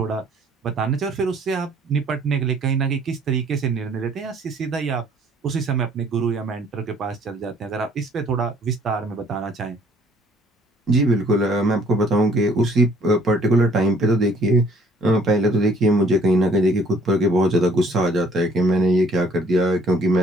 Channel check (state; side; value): normal; both; correlation 0.60